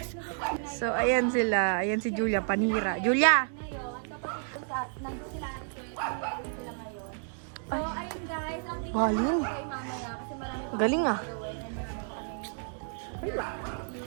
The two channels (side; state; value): left; silent; 57 dB below the other